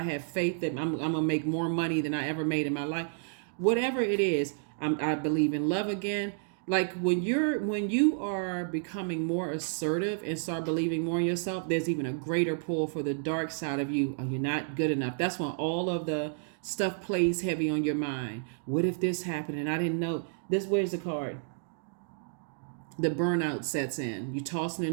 faith that I'm going to make more money than I ever made in my life. Whatever it is, I believe in love again. Like when you are becoming more assertive and start believing more in yourself, there's even a greater pull for the dark side of you. Are you not good enough? That's when all of the stuff plays heavy on your mind. What if this happened and I didn't know? Where's the card? the burnout sets in. You tossing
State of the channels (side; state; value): left; silent; digital silence